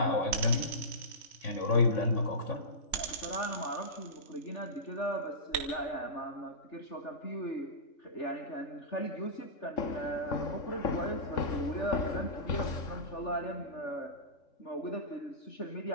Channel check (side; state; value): right; late; 3.4 ms